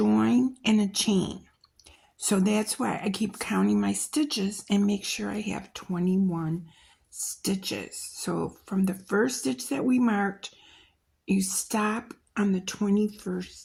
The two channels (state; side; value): identical; both; correlation 1.00